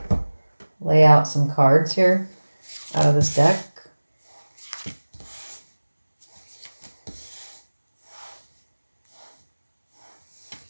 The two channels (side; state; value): both; inverted; correlation -1.00